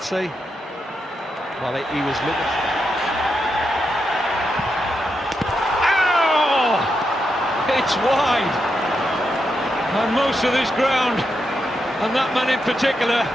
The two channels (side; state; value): both; normal; correlation 0.84